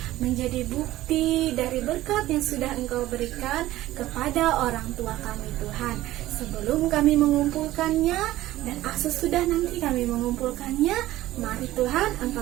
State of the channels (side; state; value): left; quieter; 15.6 dB